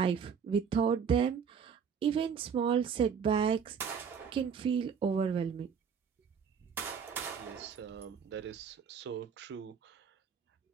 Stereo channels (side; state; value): left; quieter; 6.8 dB